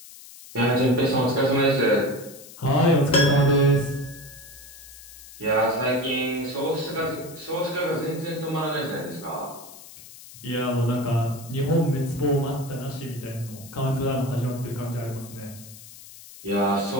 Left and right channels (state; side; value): noise; left; hiss, 18 dB below the sound